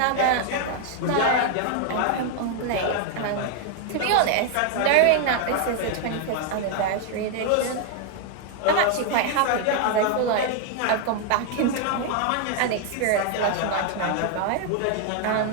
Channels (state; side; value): different; both; correlation 0.00